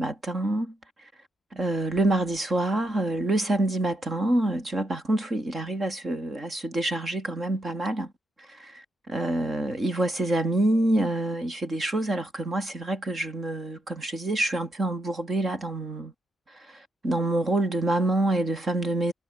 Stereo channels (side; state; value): both; normal; correlation 0.80